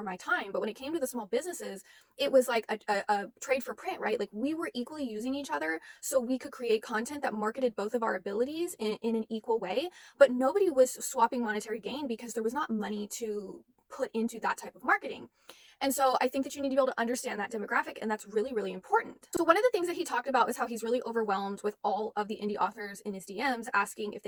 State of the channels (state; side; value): identical; both; correlation 1.00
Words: my time. But when it came to the small businesses, it was like a trade for print, right? Like we were equally using each other so we could create content that marketed both of our abilities in an equal way, but nobody was swapping monetary gain because there was not money to put into that type of marketing. And so I think that you need to be able to understand that demographic, and that's really, really important. So one of the things that he talked about is how he's really overwhelmed with all of the indie authors in his DMs asking if